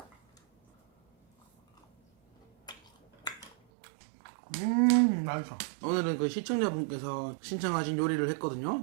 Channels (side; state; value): left; drops out; at 3.6 s